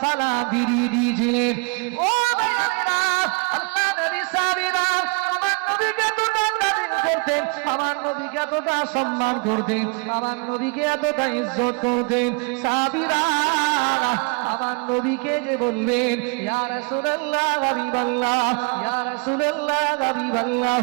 সালাম ফিরিয়ে দিয়েছিলেন। ও ভাইরা, আল্লাহ নবী সাহাবীরা আমার নবীকে করতেন, আমার নবীকে এতটা সম্মান করতেন, আমার নবীকে এতটা ইজ্জত করতেন। সাহাবীরা আমার নবীকে যে বলবেন ইয়া রাসূলুল্লাহ হাবিবাল্লাহ, ইয়া রাসূলুল্লাহ হাবিবাল্লাহ,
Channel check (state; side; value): quieter; left; 32.5 dB